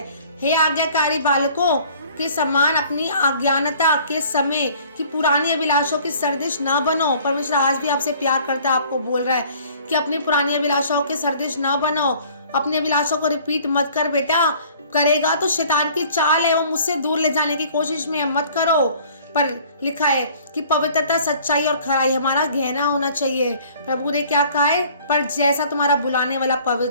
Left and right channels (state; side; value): inverted; both; correlation -0.53